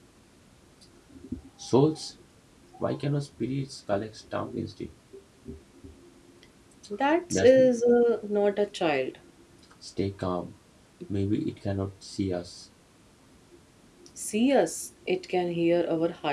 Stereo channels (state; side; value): identical; both; correlation 1.00